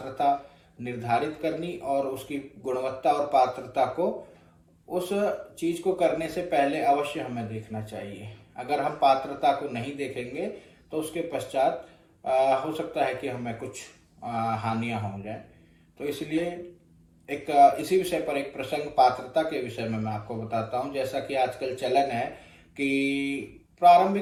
निर्धारित करनी और उसकी गुणवत्ता और पात्रता को उस चीज को करने से पहले अवश्य हमें देखना चाहिए। अगर हम पात्रता को नहीं देखेंगे तो उसके पश्चात हो सकता है कि हमें कुछ हानियां हो जाए। तो इसलिए इसी विषय पर एक प्रसंग पात्रता के विषय में मैं आपको बताता हूं। जैसा कि आजकल चलन है कि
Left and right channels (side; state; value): both; identical; correlation 1.00